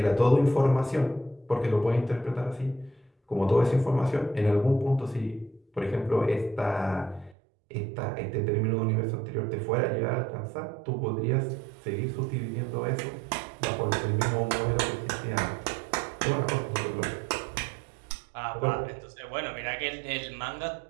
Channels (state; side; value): drops out; left; at 7.4 s